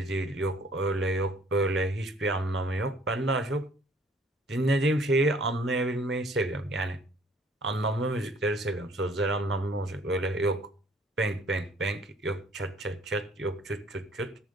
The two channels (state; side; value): normal; both; correlation 0.58